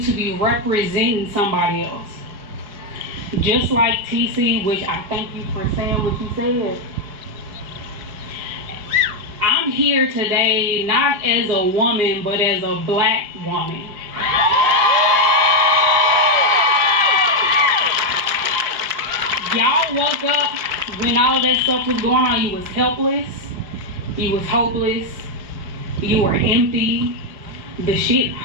to be representing somebody else. Just like TC, which I thank you for saying what you said. I'm here today not as a woman, but as a black woman. Y'all woke up when all that stuff was going on. You was helpless. You was hopeless. You were empty. The shit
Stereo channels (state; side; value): late; left; 4.8 ms